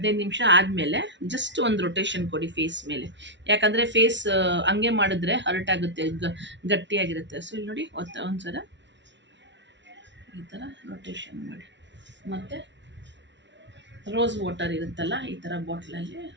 ನಿಮಿಷ ಆದಮೇಲೆ ಜಸ್ಟ್ ಒಂದು ರೊಟೇಷನ್ ಕೊಡಿ ಫೇಸ್ ಮೇಲೆ. ಯಾಕಂದರೆ ಫೇಸ್ ಹಂಗೆ ಮಾಡಿದ್ರೆ ಹರ್ಟ್ ಆಗುತ್ತೆ, ಗಟ್ಟಿಯಾಗಿರುತ್ತೆ. ಸೊ ಇಲ್ಲಿ ನೋಡಿ, ಒಂದ್ಸಲ ಈ ಥರ ರೊಟೇಷನ್ ಮಾಡಿ. ಮತ್ತು ರೋಸ್ ವಾಟರ್ ಇರುತ್ತಲ್ಲ, ಈ ಥರ ಬಾಟ್ಲಲ್ಲಿ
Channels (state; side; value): late; left; 0.52 ms